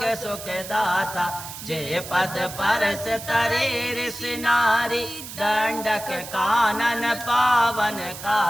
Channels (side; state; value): right; noise; hiss, 11 dB below the sound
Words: सुख दाता जय पद परस तरे ऋषि नारी दंडक कानन